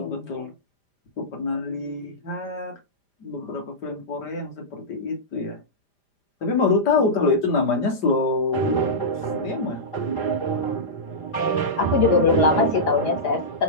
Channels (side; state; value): right; late; 5.0 ms